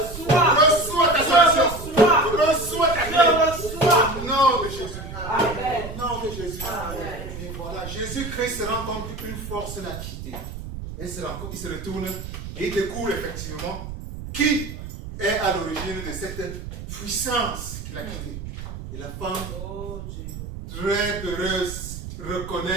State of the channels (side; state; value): right; noise; rumble, 9 dB below the sound